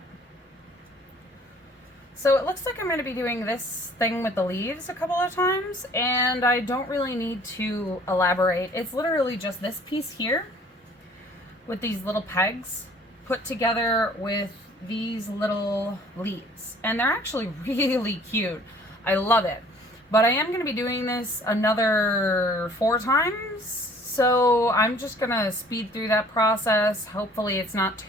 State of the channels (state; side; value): normal; both; correlation 0.54